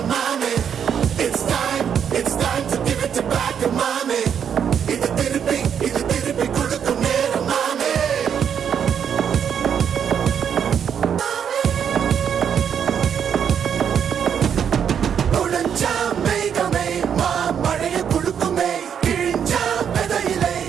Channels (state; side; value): quieter; left; 8.1 dB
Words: மாமே. It's time to give it back to mommy. இது திருப்பி கொடுக்கும் நேரம் மாமே. உடைஞ்சா மேகமே மழையை குடுக்குமே, கிழிஞ்சா விதையிலே